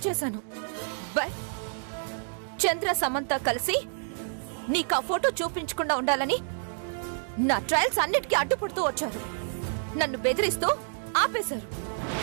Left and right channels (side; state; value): left; silent; digital silence